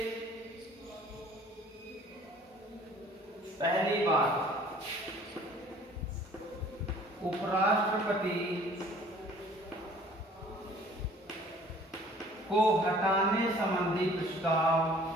पहली बात, उपराष्ट्रपति को हटाने संबंधी प्रस्ताव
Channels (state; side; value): normal; both; correlation 0.52